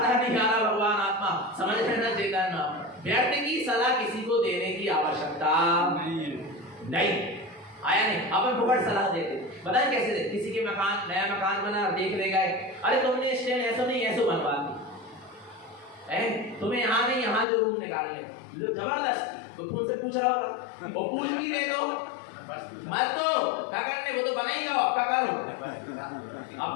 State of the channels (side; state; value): right; drops out; at 17.4 s